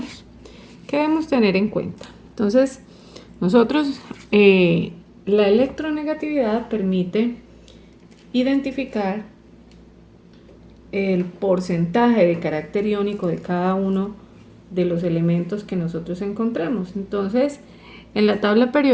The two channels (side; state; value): both; identical; correlation 1.00